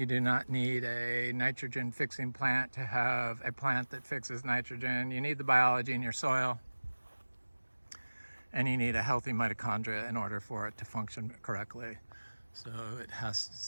do not need a nitrogen fixing plant to have a plant that fixes nitrogen. You need the biology in your soil, and you need a healthy mitochondria in order for it to function correctly. So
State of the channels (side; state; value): both; inverted; correlation -1.00